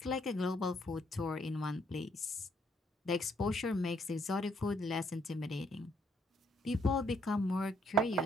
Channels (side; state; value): both; normal; correlation 0.69